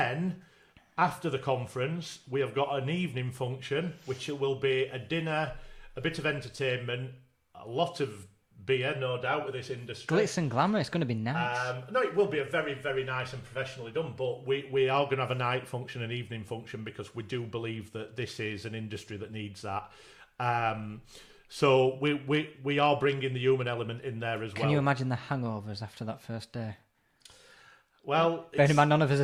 after the conference, we have got an evening function, which will be a dinner, a bit of entertainment, a lot of beer, no doubt, with this industry. Glitz and glamour, it's going to be nice. No, it will be a very, very nice and professionally done, but we are going to have a night function, an evening function, because we do believe that this is an industry that needs that. So we are bringing the human element in there as well. Can you imagine the hangovers after that first day? Well, bear in mind, none of us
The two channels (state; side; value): identical; both; correlation 1.00